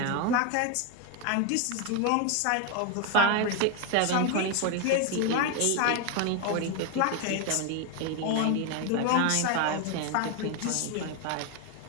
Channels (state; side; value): different; both; correlation 0.01